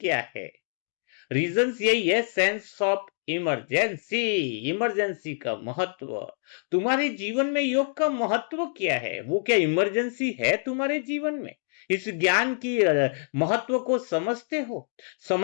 है? रीजंस यही है, सेंस ऑफ इमरजेंसी। इमरजेंसी का महत्व, तुम्हारे जीवन में योग का महत्व क्या है? वो क्या इमरजेंसी है तुम्हारे जीवन में? इस ज्ञान की महत्व को समझते हो?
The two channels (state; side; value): silent; right; digital silence